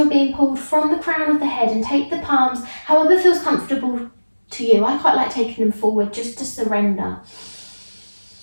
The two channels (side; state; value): both; inverted; correlation -1.00